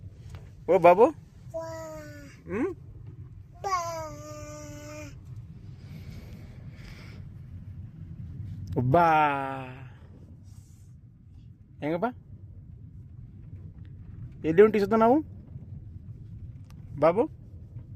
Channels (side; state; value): both; identical; correlation 1.00